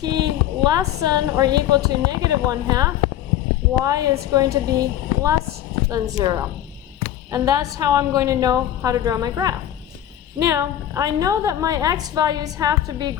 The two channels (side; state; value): right; quieter; 11.6 dB